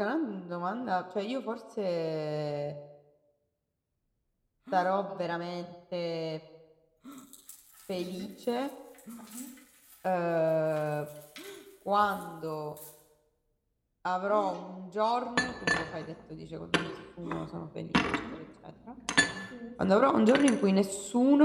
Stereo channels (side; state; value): both; identical; correlation 1.00